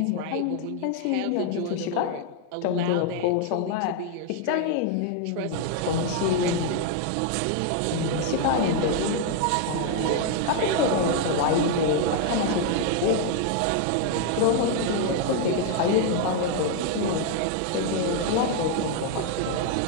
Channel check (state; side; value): different; both; correlation 0.00